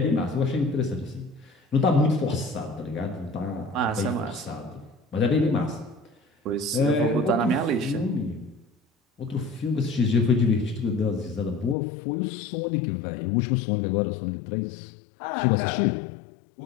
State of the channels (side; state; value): right; drops out; at 11.8 s